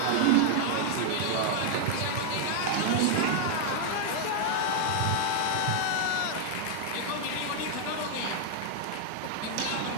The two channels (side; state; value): both; different; correlation 0.00